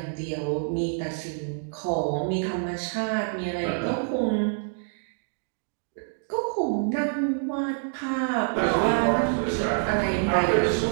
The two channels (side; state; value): left; silent; digital silence